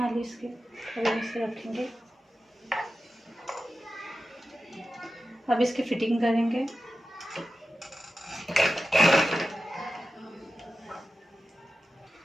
ली इसके, अब इसे रखेंगे। अब इसकी फिटिंग करेंगे।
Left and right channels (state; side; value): normal; both; correlation 0.94